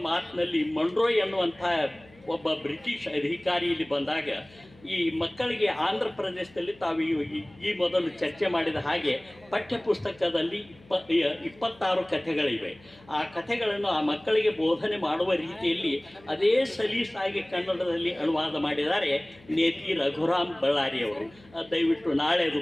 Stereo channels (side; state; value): left; noise; hum, 26 dB below the sound